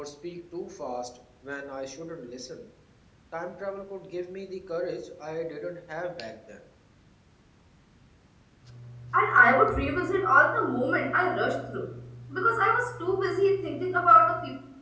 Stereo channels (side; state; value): both; identical; correlation 1.00